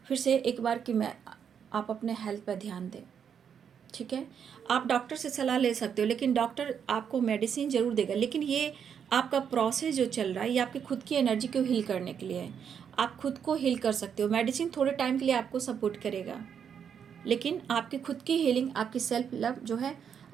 फिर से एक बार कि आप अपने हेल्थ पर ध्यान दें। ठीक है, आप डॉक्टर से सलाह ले सकते हो, लेकिन डॉक्टर आपको मेडिसिन ज़रूर देगा, लेकिन ये आपका प्रोसेस जो चल रहा है ये आपकी खुद की एनर्जी को हील करने के लिए है। आप खुद को हील कर सकते हो, मेडिसिन थोड़े टाइम के लिए आपको सपोर्ट करेगा, लेकिन आपकी खुद की हीलिंग, आपकी सेल्फ लव जो है,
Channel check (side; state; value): left; quieter; 7.7 dB